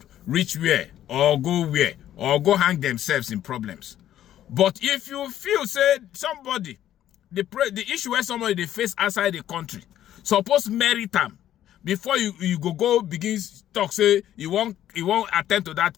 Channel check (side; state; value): right; quieter; 11.9 dB